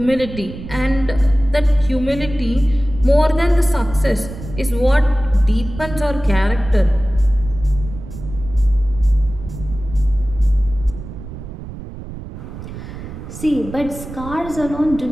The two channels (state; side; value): noise; right; rumble, 11 dB below the sound